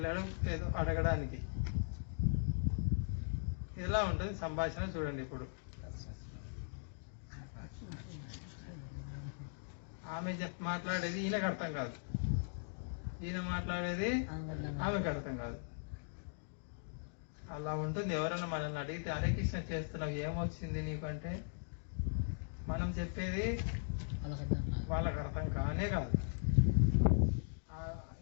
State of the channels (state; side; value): silent; right; digital silence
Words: ఏదో అడగడానికి. ఎలా ఉంటుంది సంభాషణ చూడండి. ఇప్పుడు ఆమె మాట్లాడేది ఈయనకు అర్థం కాదు, ఈయన మాట్లాడేది ఆమెకు అర్థం కాదు. అలా ఉంటుంది. ఎవరైనా మనల్ని అడిగితే హరే కృష్ణ చేస్తున్నావు ఏమొచ్చింది నీకు అంటే, మనం చెప్పేది వాళ్ళకి అర్థం కానే కాదు.